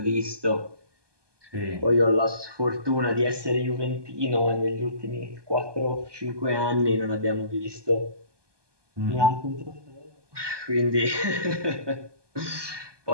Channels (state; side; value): late; left; 1.2 ms